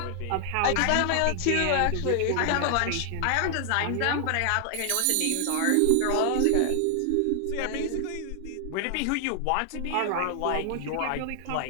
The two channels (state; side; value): different; both; correlation 0.00